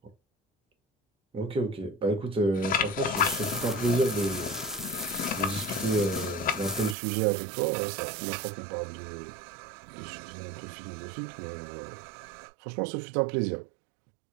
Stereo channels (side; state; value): left; drops out; at 7.0 s